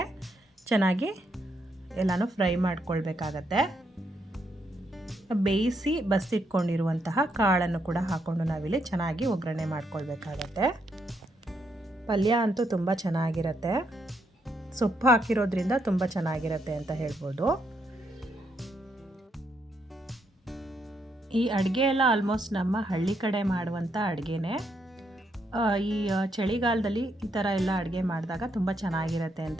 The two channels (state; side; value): normal; both; correlation 0.77